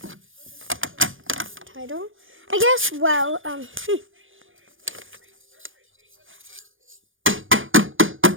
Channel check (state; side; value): late; left; 0.58 ms